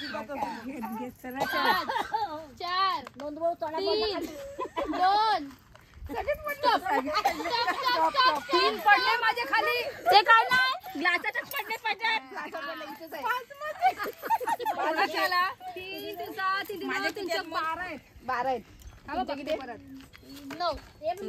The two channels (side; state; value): both; identical; correlation 1.00